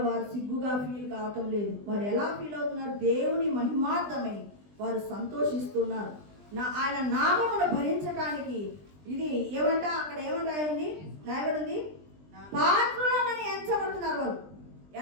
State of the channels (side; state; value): left; late; 20 ms